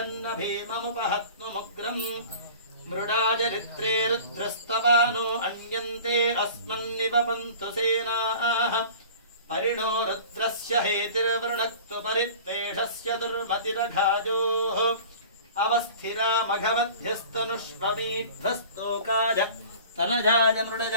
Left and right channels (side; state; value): both; inverted; correlation -0.43